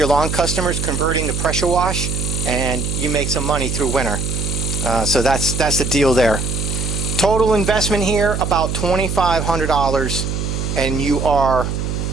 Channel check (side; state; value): right; noise; hum, 2 dB below the sound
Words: lawn customers converting to pressure wash, and you make some money through winter. So that's the deal there. Total investment here about $2,500, and you are